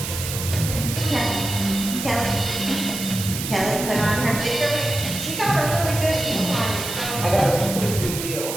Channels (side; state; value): right; noise; hiss, 6 dB below the sound